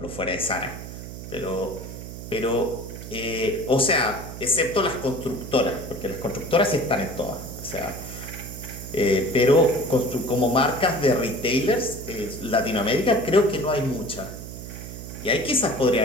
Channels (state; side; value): noise; right; hum, 11 dB below the sound